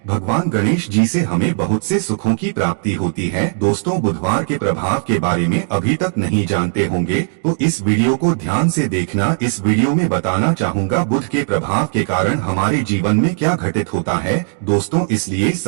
भगवान गणेश जी से हमें बहुत से सुखों की प्राप्ति होती है। दोस्तों, बुधवार के प्रभाव के बारे में अभी तक नहीं जानते होंगे तो इस वीडियो को ध्यान से देखना। इस वीडियो में बताना चाहूंगा बुध के प्रभाव के कारण हमारे जीवन में क्या घटित होता है। दोस्तों, इसलिए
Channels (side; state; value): left; silent; digital silence